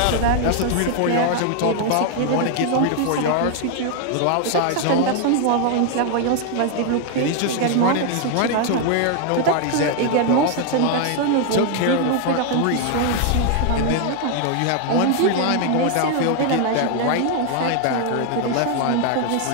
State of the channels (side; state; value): both; different; correlation 0.00